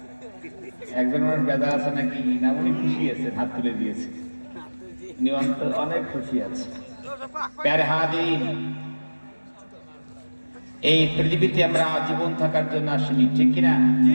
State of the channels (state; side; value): inverted; both; correlation -1.00